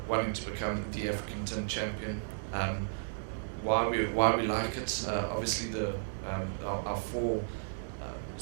wanting to become the African Tin Champion. Why we like it? Obviously, our four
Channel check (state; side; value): silent; left; digital silence